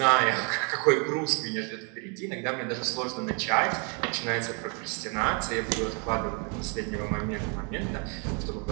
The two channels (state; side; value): quieter; left; 36.6 dB